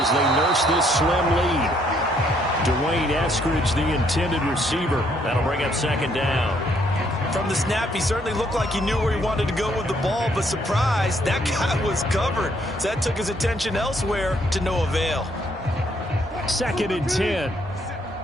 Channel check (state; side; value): normal; both; correlation 0.69